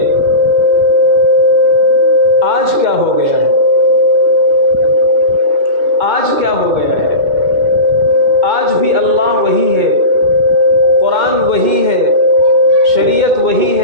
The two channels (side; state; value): left; late; 2.1 ms